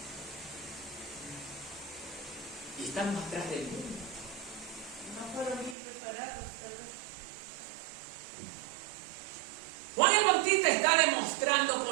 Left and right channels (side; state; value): left; drops out; at 5.8 s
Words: Y estamos atrás del mundo. No fueron bien preparados, pero... Juan el Bautista está demostrando